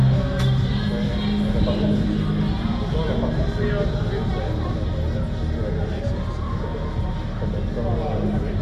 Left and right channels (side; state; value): both; identical; correlation 1.00